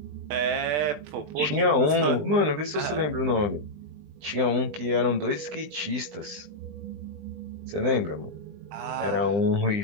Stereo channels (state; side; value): late; left; 20 ms